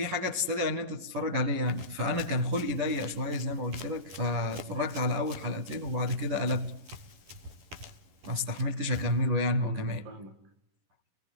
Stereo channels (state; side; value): late; left; 11 ms